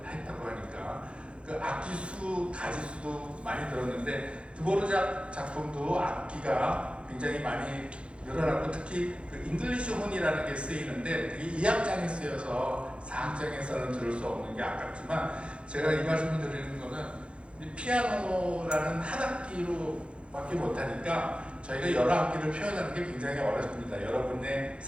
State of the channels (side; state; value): left; late; 0.058 ms